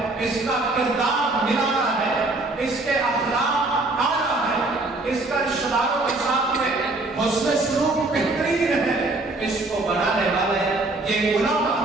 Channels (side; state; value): left; quieter; 3.0 dB